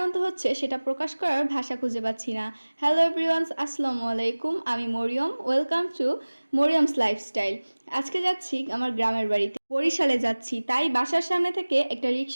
হচ্ছে সেটা প্রকাশ করার ভাষা খুঁজে পাচ্ছি না। হ্যালো এভরিওয়ান, আসসালামু আলাইকুম। আমি মরিয়ম, ওয়েলকাম টু মরিয়মস লাইফস্টাইল। আজকে যাচ্ছি আমার গ্রামের বাড়িতে, বরিশালে যাচ্ছি। তাই বাসার সামনে থেকে একটা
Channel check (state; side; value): inverted; both; correlation -1.00